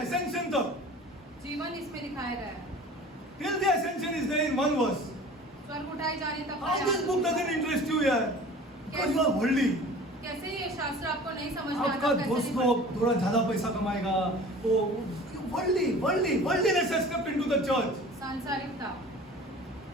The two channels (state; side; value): normal; both; correlation 0.42